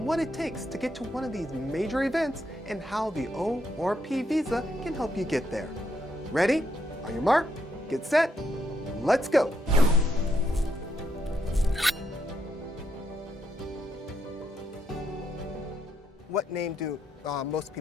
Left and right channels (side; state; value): both; normal; correlation 0.77